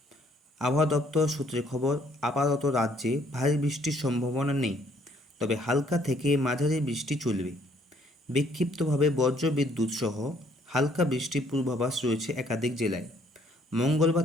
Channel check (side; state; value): both; normal; correlation 0.64